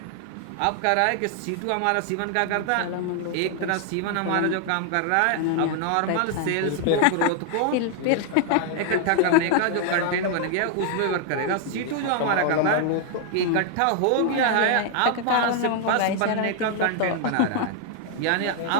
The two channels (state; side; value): different; both; correlation 0.00